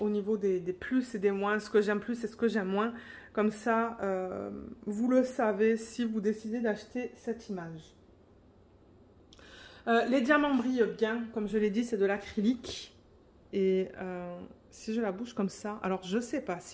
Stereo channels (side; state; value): both; identical; correlation 1.00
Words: niveau des plus et des moins, ce que j'aime plus et ce que j'aime moins. Comme ça, vous le savez si vous décidez d'acheter cette image. Les diamants brillent bien, comme je l'ai dit, c'est de l'acrylique. Et si je la bouge comme ça, alors je sais pas